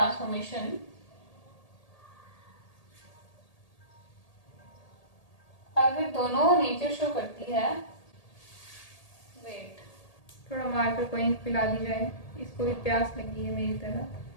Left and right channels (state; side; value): late; right; 1.8 ms